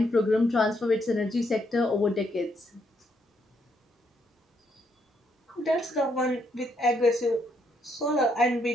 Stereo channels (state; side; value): normal; both; correlation 0.74